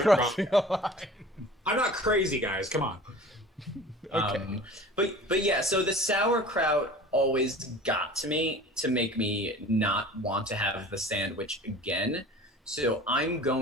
crossing a line. I'm not crazy, guys. Come on. Okay. But yeah, so the sauerkraut always got to me to make me not want to have the sandwich again. So I'm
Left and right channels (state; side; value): normal; both; correlation 0.42